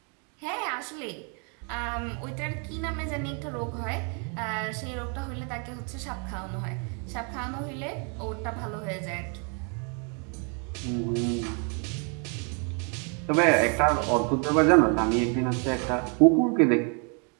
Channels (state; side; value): quieter; left; 37.8 dB